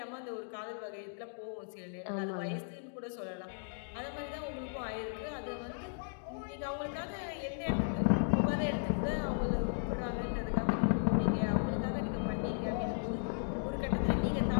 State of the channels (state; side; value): silent; right; digital silence